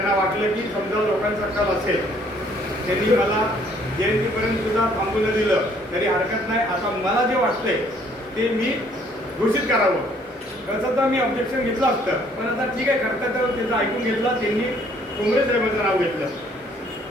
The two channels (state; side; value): normal; both; correlation 0.62